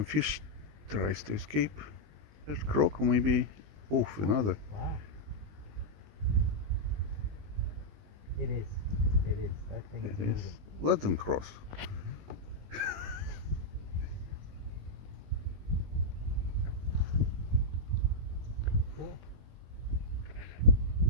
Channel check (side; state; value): left; late; 20 ms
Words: fish tries to escape. That croak maybe. Oof, another. Wow. It is. It is. That thing is It is. moving. Let them cross. Cool.